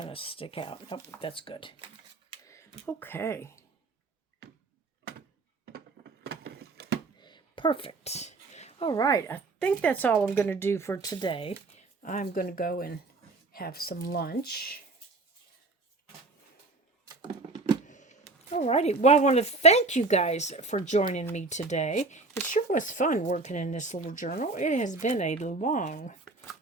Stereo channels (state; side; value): quieter; left; 3.5 dB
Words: to stick out. Nope, that's good. Okay. Perfect. All right, I think that's all I'm going to do for today. I'm going to go and have some lunch. Alrighty, well, I want to thank you guys for joining me today. It sure was fun working in this little journal. It has been a long